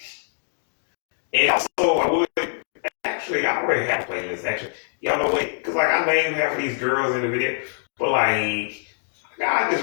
And also, I would actually, I already have a playlist. Actually, y'all know what? Because like I named half of these girls in the video, but like I just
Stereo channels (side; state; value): right; silent; digital silence